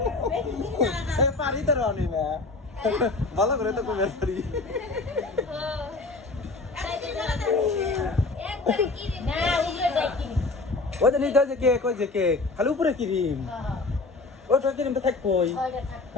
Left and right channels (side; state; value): right; quieter; 3.5 dB